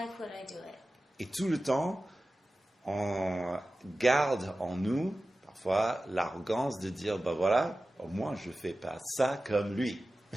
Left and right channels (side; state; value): both; normal; correlation 0.95